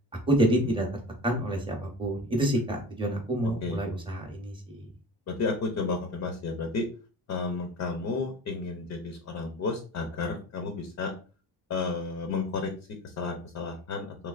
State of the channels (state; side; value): normal; both; correlation 0.35